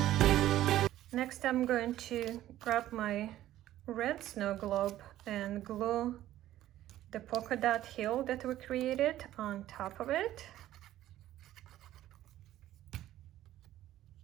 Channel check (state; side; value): quieter; left; 13.7 dB